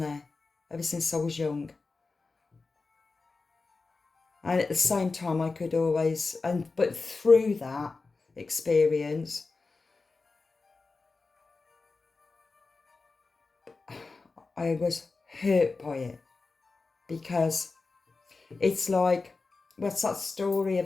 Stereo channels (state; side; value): quieter; right; 4.0 dB